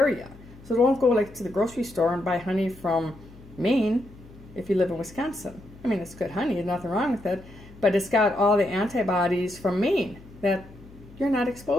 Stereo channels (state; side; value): noise; left; hum, 21 dB below the sound